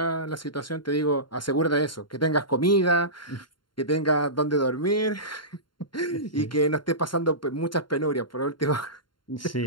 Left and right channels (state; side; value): late; right; 0.72 ms